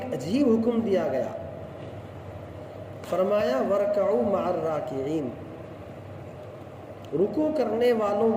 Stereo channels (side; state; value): both; identical; correlation 1.00